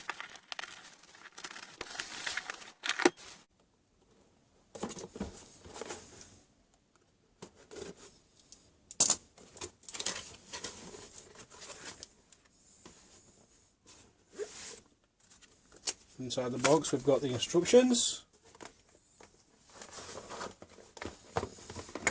Inside the box we've got the instructions.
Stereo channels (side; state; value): both; identical; correlation 1.00